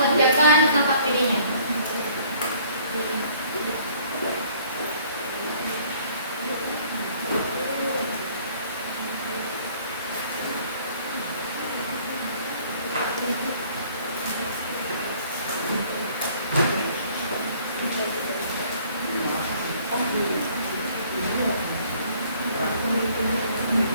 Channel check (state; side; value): inverted; both; correlation -0.57